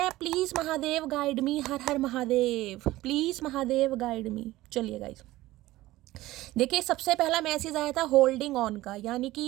Please Mahadev guide me, her her Mahadev, please Mahadev guide मी। चलिए गाइस, देखिए सबसे पहला मैसेज आया था होल्डिंग ऑन का, यानी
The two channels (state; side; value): quieter; left; 17.1 dB